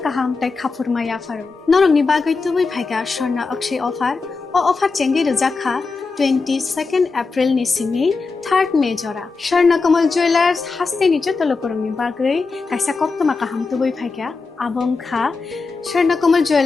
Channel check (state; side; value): quieter; right; 4.3 dB